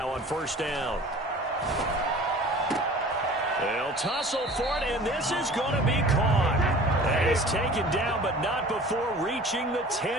on first down. They'll tussle for it, and this is going to be caught. And it's taken down, but not before reaching the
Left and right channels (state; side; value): normal; both; correlation 0.44